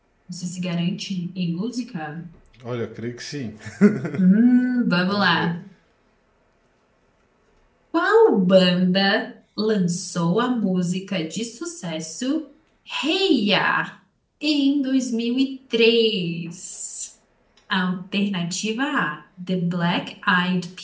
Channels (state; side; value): identical; both; correlation 1.00